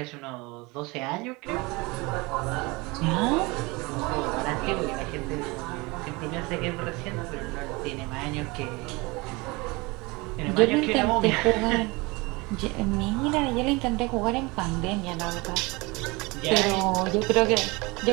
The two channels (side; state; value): left; quieter; 24.9 dB